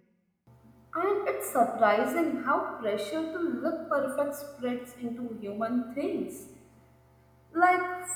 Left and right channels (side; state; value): both; identical; correlation 1.00